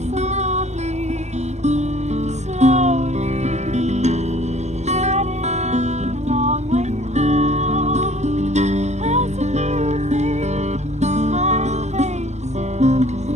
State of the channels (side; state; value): left; late; 0.33 ms